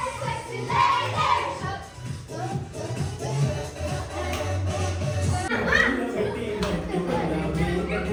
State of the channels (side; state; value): both; identical; correlation 1.00